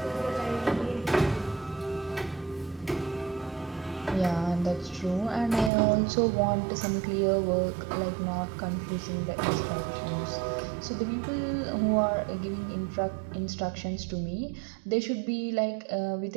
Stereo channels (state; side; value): drops out; left; at 5.7 s